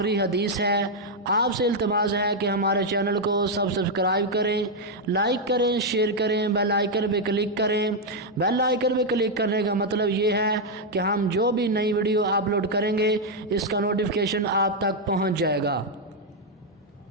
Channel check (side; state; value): both; normal; correlation 0.00